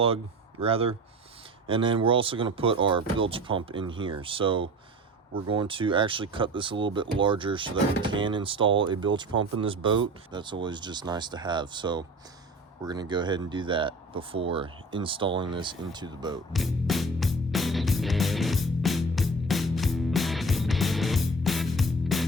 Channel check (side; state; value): both; normal; correlation 0.40